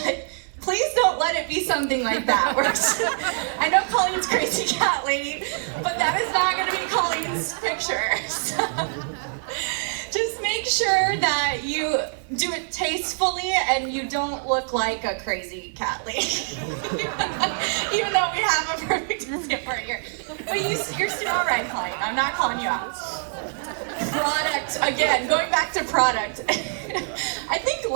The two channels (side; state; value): left; silent; digital silence